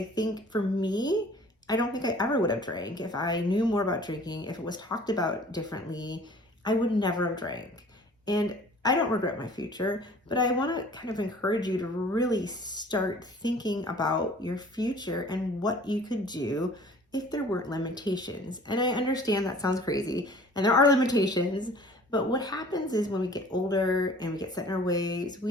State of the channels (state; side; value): normal; both; correlation 0.49